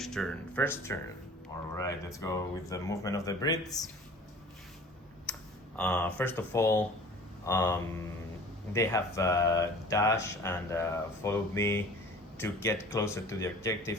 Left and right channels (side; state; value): both; normal; correlation 0.45